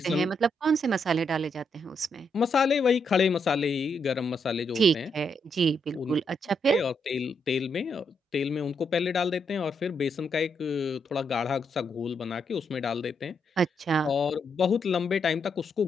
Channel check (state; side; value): normal; both; correlation 0.78